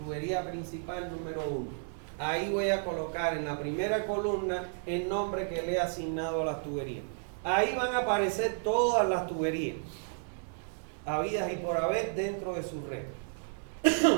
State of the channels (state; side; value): silent; left; digital silence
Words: principal número 1. Ahí voy a colocar en la primera columna el nombre que le he asignado a las tuberías. Ahí van a aparecer todas las tuberías habidas y por haber dentro de su red.